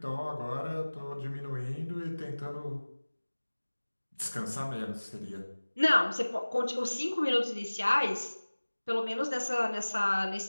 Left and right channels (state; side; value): inverted; both; correlation -1.00